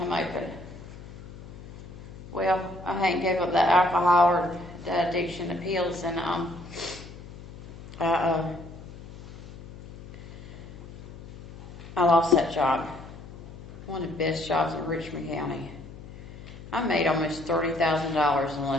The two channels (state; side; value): noise; left; hum, 14 dB below the sound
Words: open. Well, I hadn't gave up that alcohol or that addiction to pills, and I lost that job. One of the best jobs in Richmond County. I made almost $30,000 in